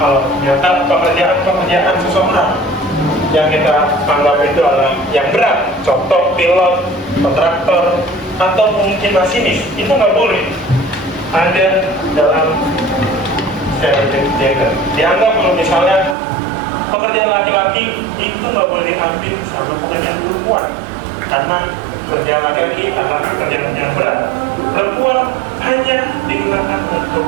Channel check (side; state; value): left; drops out; at 16.2 s